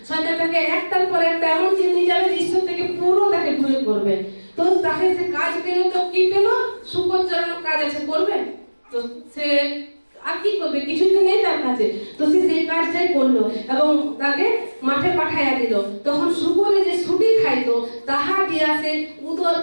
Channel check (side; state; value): both; inverted; correlation -1.00